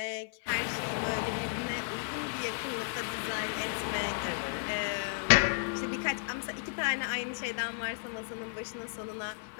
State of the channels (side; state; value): right; silent; 55 dB below the other